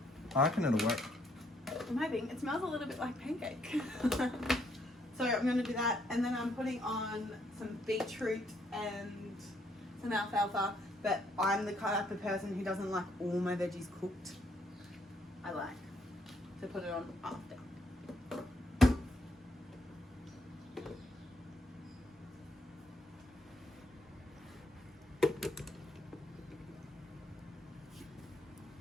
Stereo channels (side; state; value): both; normal; correlation 0.71